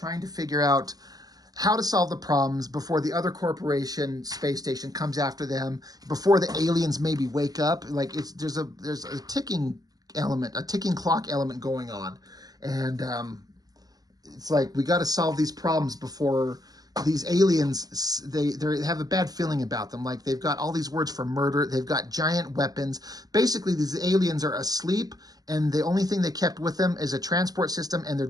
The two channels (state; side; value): late; left; 0.18 ms